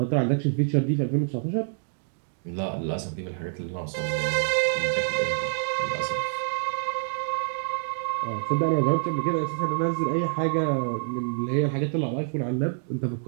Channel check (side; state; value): left; silent; digital silence